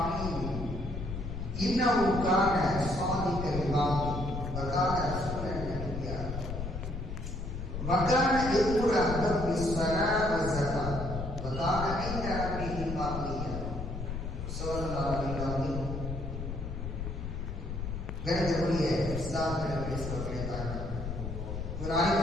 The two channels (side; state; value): left; noise; rumble, 5 dB below the sound